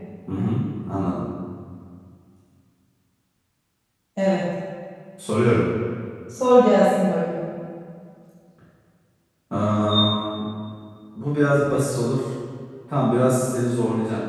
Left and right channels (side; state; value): both; identical; correlation 1.00